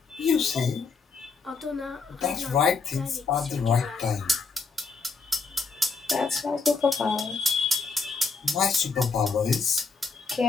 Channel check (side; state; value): right; quieter; 4.6 dB